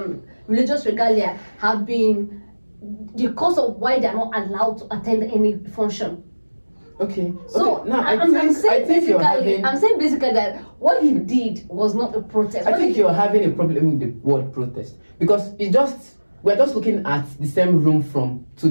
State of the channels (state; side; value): inverted; both; correlation -1.00